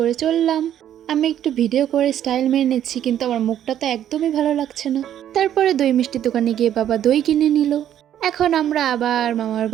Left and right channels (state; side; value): quieter; left; 10.8 dB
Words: চললাম। আমি একটু ভিডিও করে স্টাইল মেরে নিচ্ছি, কিন্তু আমার মুখটা তো একদমই ভালো লাগছে না। তারপরে দই মিষ্টি দোকানে গিয়ে বাবা দই কিনে নিল। এখন আমরা আবার মামার